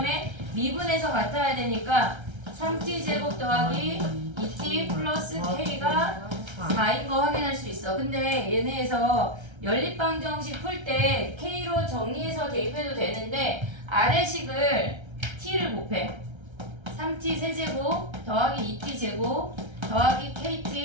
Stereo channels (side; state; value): left; late; 1.3 ms